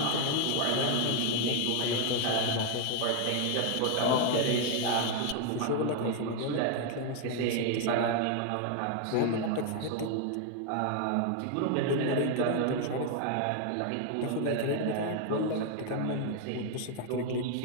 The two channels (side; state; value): both; different; correlation 0.00